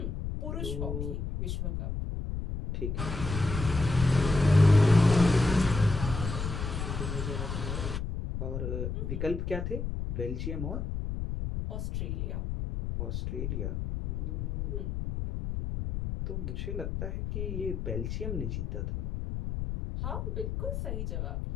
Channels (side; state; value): left; noise; rumble, 3 dB below the sound